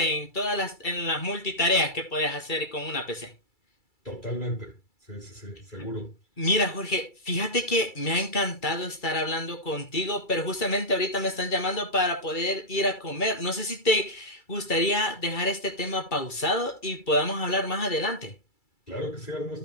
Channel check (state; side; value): late; right; 2.3 ms